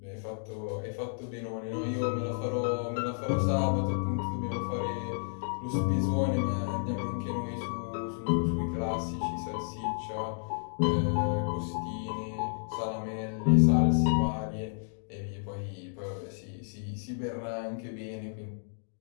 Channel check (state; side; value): silent; right; digital silence